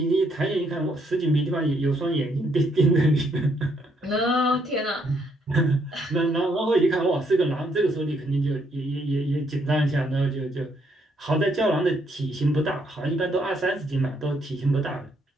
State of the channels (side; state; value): both; normal; correlation 0.72